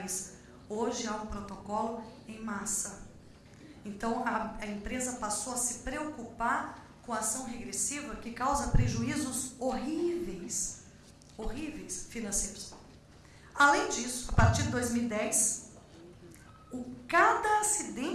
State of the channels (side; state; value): both; identical; correlation 1.00